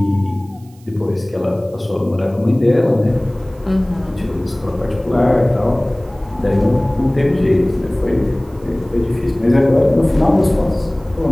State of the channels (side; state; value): right; noise; hiss, 30 dB below the sound